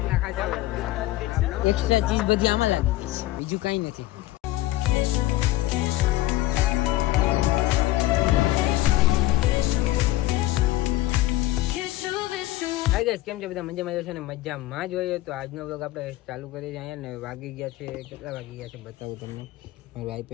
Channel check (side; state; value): right; quieter; 16.4 dB